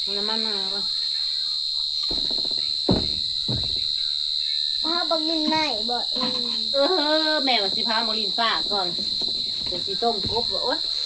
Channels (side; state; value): both; identical; correlation 1.00